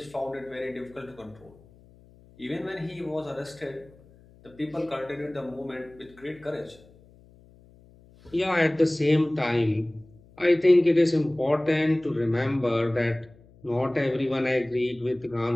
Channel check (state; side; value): noise; left; hum, 26 dB below the sound